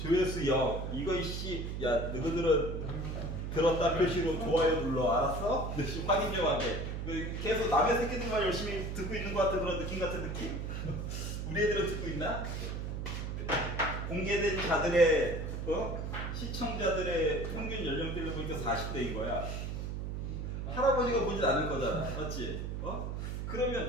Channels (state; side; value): noise; right; hum, 4 dB below the sound